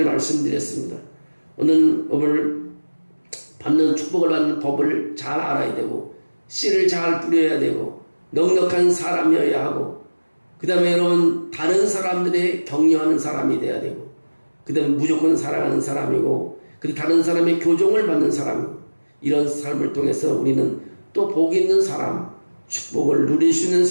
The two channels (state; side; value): inverted; both; correlation -1.00